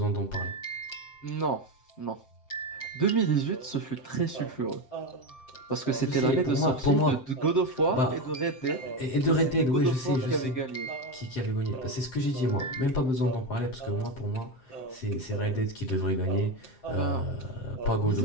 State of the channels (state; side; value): late; right; 7.6 ms